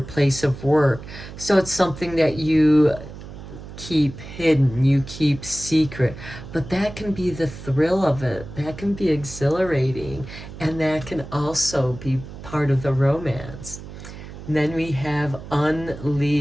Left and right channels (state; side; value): noise; right; hum, 13 dB below the sound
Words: place of work. So it's something that you keep hidden, you keep secret. But that can be the thrill of it. That can be exhilarating. And that can also be part of the romance. And then we have